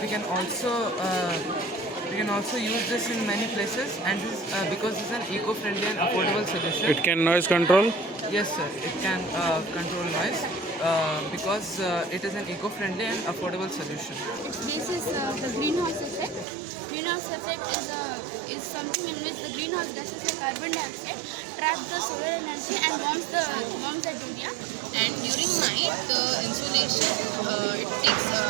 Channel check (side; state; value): left; drops out; at 16.4 s